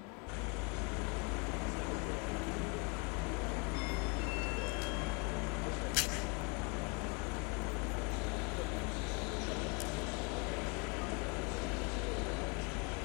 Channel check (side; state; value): right; quieter; 32.8 dB